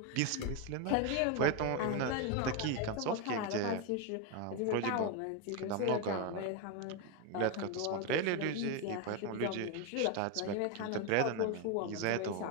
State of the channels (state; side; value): different; both; correlation 0.02